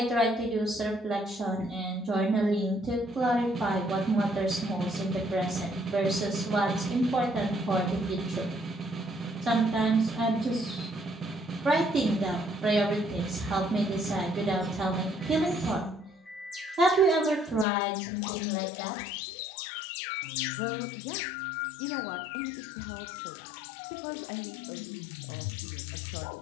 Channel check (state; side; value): drops out; right; at 17.7 s